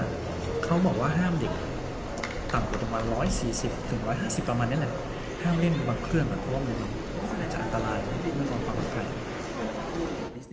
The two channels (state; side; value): identical; both; correlation 1.00